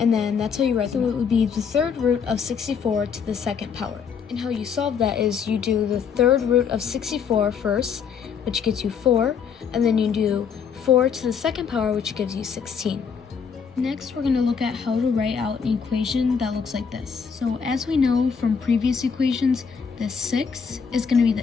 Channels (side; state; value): right; quieter; 6.5 dB